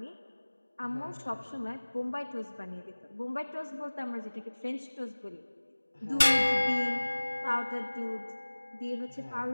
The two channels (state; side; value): inverted; both; correlation -1.00